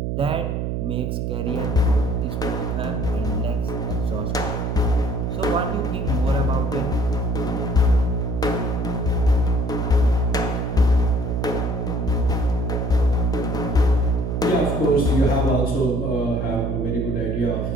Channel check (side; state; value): right; noise; hum, 1 dB below the sound